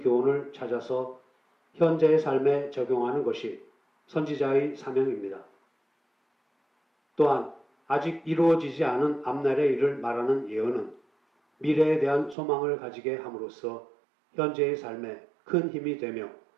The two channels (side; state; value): left; drops out; at 12.4 s